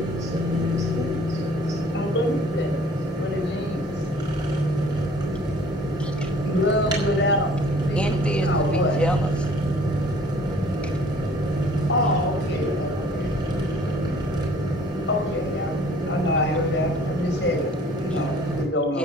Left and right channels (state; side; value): normal; both; correlation 0.53